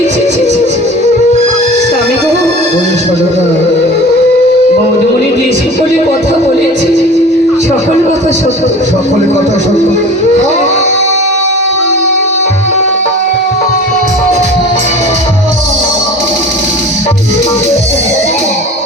ছি, ছি, ছি, ছি। স্বামী গো, ওই সারদা, বৌদমণি যে সকলে কথা বলেছি সকল কথা সত্য। সকলে কথা সত্য।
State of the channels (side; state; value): both; normal; correlation 0.40